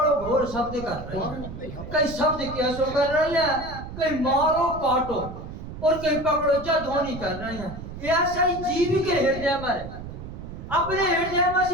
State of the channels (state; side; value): noise; right; rumble, 11 dB below the sound